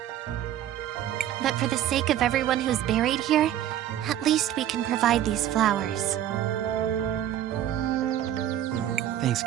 But for the sake of everyone who's buried here, at least we can provide these flowers. Thanks,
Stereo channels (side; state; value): left; quieter; 11.7 dB